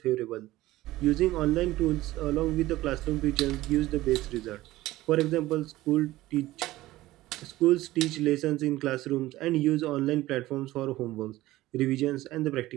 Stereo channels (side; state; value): left; quieter; 16.9 dB